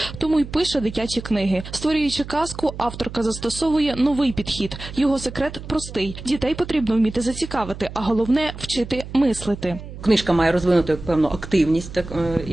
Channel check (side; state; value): right; noise; hum, 12 dB below the sound